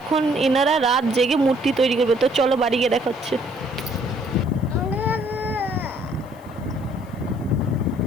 এনারা রাত জেগে মূর্তি তৈরি করবে। তো চলো বাড়ি গিয়ে দেখাচ্ছে।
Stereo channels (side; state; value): left; noise; hiss, 29 dB below the sound